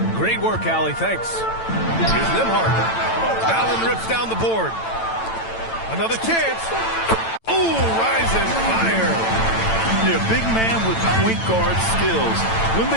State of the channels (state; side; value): late; right; 9.0 ms